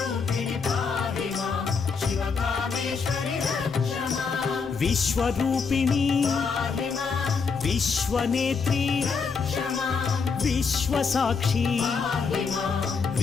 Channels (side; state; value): right; quieter; 5.3 dB